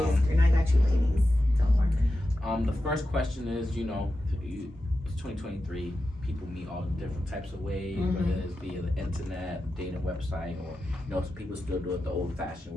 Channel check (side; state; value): both; normal; correlation 0.91